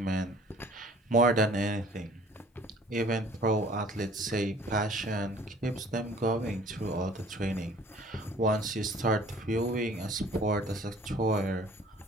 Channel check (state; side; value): normal; both; correlation 0.52